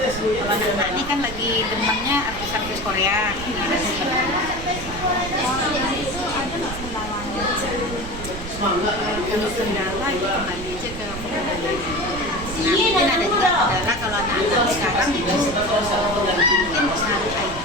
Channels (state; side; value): noise; right; rumble, 10 dB below the sound